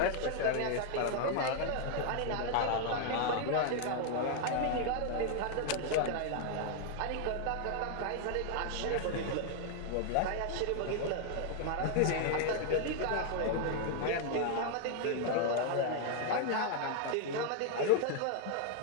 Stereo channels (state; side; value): different; both; correlation 0.00